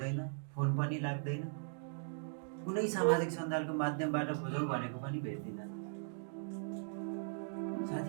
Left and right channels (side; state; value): left; silent; digital silence